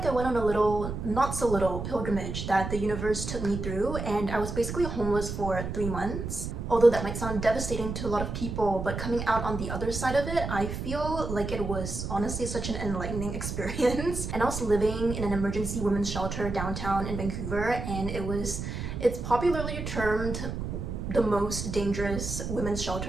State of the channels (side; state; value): right; noise; rumble, 5 dB below the sound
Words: I went on a little, not so little, pilgrimage that the universe took me through, and I was basically homeless for 3 months. Although that might sound devastating to a lot of people, but coming out on the other side of it, I feel like it was honestly such an enlightening experience. And I was living in an emergency women's shelter downtown in Vancouver, and it's popularly termed the most dangerous women's